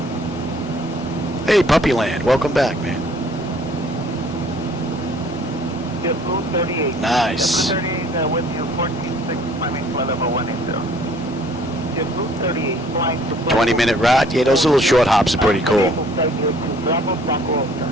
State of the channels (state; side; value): normal; both; correlation 0.56